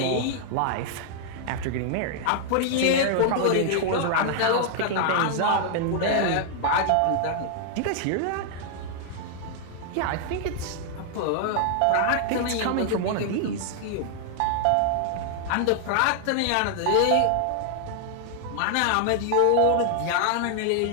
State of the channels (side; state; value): both; different; correlation 0.00